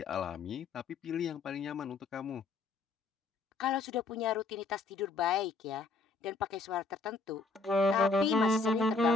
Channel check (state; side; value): quieter; right; 3.9 dB